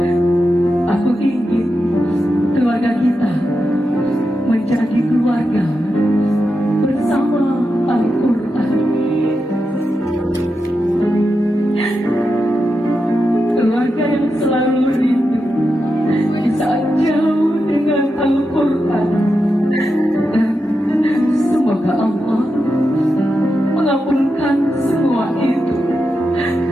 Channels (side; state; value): both; normal; correlation 0.88